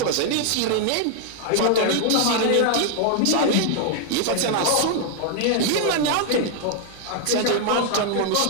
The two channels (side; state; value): both; different; correlation 0.00